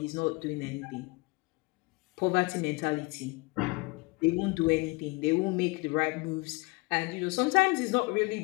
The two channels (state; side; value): quieter; right; 25.5 dB